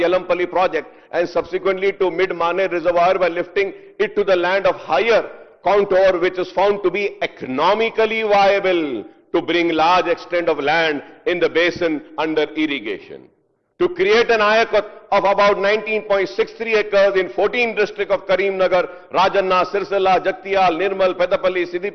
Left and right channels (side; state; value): both; identical; correlation 1.00